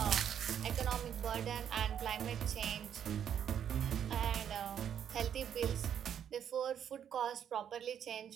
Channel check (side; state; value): left; quieter; 9.0 dB